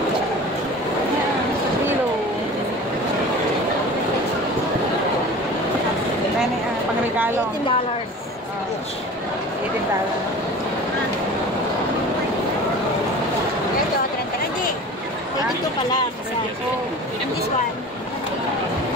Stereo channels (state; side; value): normal; both; correlation 0.39